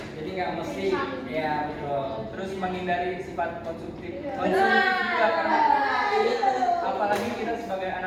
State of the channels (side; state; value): both; identical; correlation 1.00